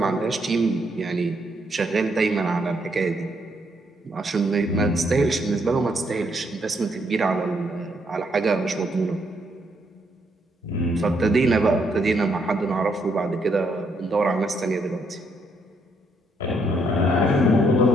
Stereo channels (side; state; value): both; normal; correlation 0.74